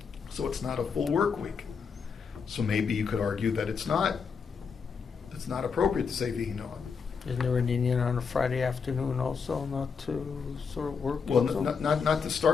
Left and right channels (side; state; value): right; quieter; 5.8 dB